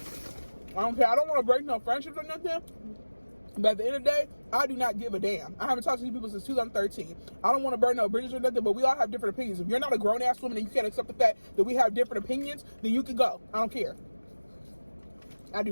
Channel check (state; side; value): inverted; both; correlation -1.00